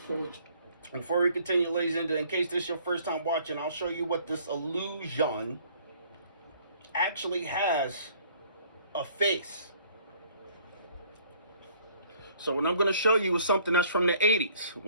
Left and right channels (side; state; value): both; inverted; correlation -0.58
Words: Before we continue, ladies and gentlemen, in case this is your first time watching, I'll show you what this illusion actually has a face. So what I'm going to show you is something that's from the 80s.